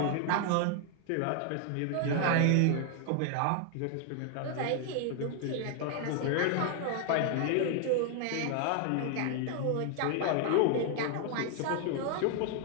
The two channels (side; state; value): both; different; correlation 0.00